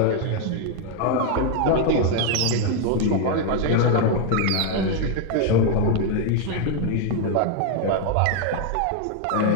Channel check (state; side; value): different; both; correlation 0.01